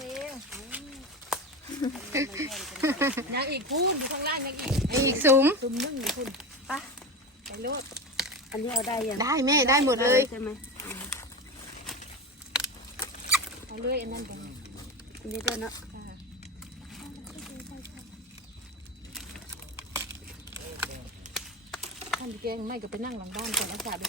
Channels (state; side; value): normal; both; correlation 0.24